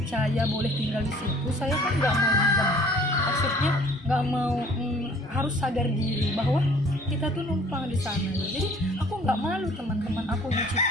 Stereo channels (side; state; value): both; normal; correlation 0.54